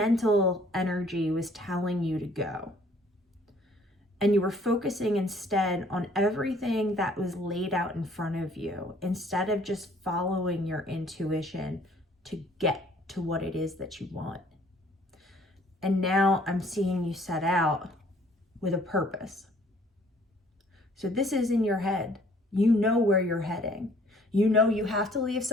energy was telling you to go. And you were focusing instead on everything that was laid out in front of you, instead of just following your intuition to get to what it is that you want. And now I'm seeing you set out with a purpose. So this is in your head. You know where you're heading. You know you have to leave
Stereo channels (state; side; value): normal; both; correlation 0.58